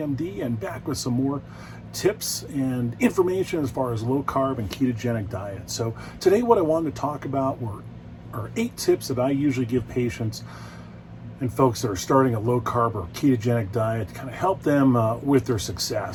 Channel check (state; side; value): identical; both; correlation 1.00